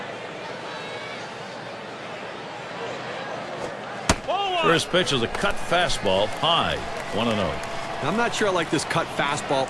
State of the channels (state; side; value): identical; both; correlation 1.00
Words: First pitch is a cut fastball high, 1-0. I'm not sure I like this cut